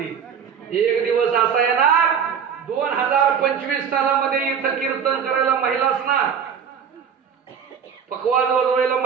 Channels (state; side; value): quieter; left; 7.4 dB